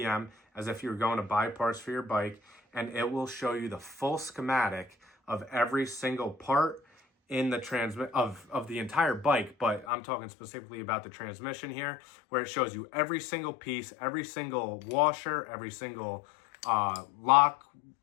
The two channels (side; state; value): right; drops out; at 9.9 s